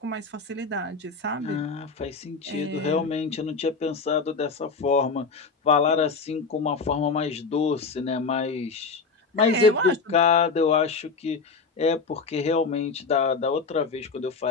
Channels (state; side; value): quieter; right; 4.7 dB